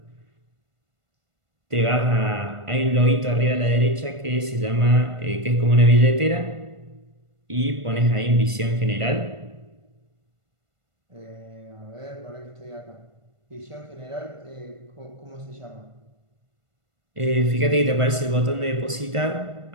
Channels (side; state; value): left; late; 1.5 ms